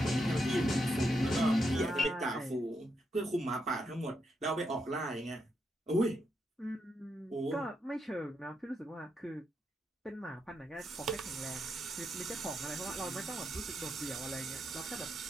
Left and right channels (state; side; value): normal; both; correlation 0.81